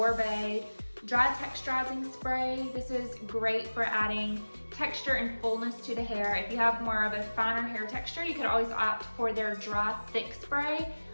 Dry Texturizing Spray. This is great for adding texture and fullness to the hair. If you have more of a finer hair texture, you could always opt for their Dry Thick Spray,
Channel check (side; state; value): both; inverted; correlation -1.00